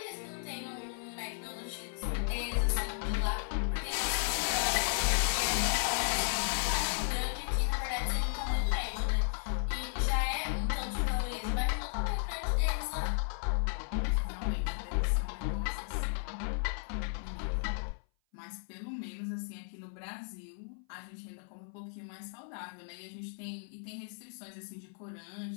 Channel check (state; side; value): silent; right; 55 dB below the other